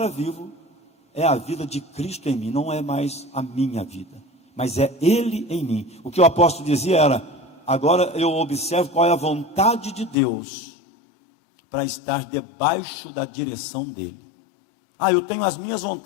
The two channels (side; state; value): right; drops out; at 10.2 s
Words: vivo é a vida de Cristo em mim, não é mais a minha vida, mas é Ele em mim. O que o apóstolo dizia era: agora eu observo qual é a vontade de Deus, para estar debaixo da direção dEle. Eu tenho as minhas